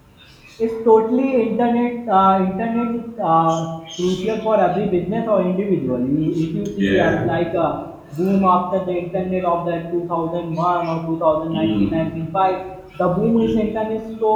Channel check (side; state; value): both; identical; correlation 1.00